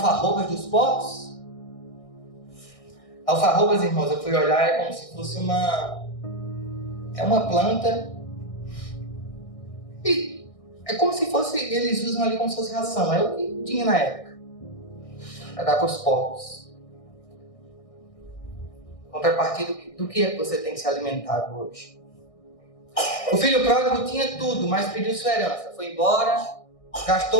dos porcos? Alfarrobas, irmãos, eu fui olhar, é como se fosse uma planta. E é como se fosse, eles usam ali como se fosse ração. É o que tinha na época. Para dar para os porcos. Contrapartida, do que é que você tem se alimentado hoje? O filho pródigo tinha tudo, mas pediu sua herança. Foi embora,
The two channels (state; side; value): late; right; 1.6 ms